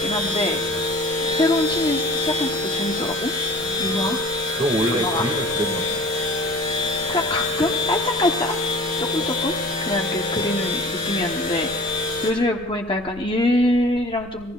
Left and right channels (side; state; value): left; noise; rumble, 21 dB below the sound